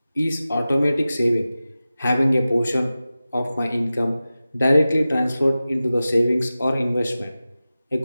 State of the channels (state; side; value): inverted; both; correlation -0.95